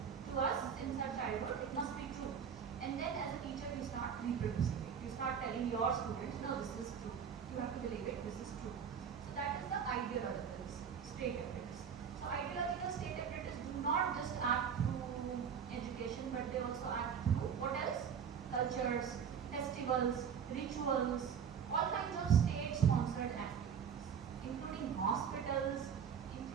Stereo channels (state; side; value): quieter; left; 7.4 dB